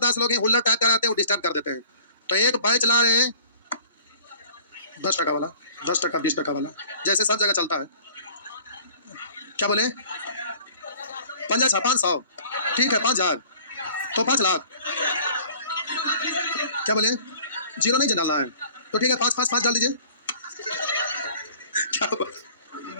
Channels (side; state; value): both; inverted; correlation -0.49